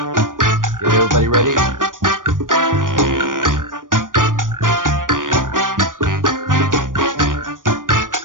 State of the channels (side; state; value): left; late; 0.89 ms